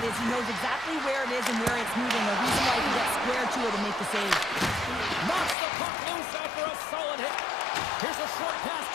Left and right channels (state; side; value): drops out; right; at 5.6 s